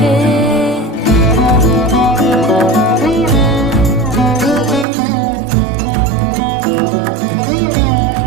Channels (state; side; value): drops out; left; at 4.9 s